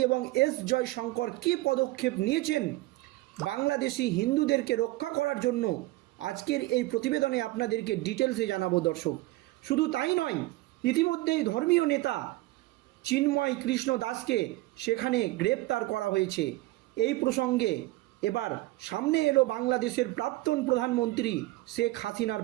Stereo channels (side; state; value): left; quieter; 19.3 dB